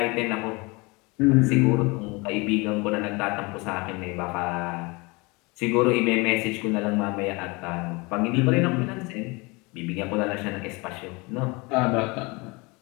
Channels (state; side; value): quieter; right; 26.4 dB